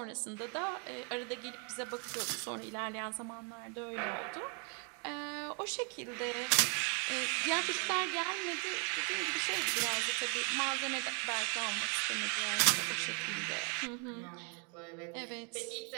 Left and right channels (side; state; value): left; quieter; 37.8 dB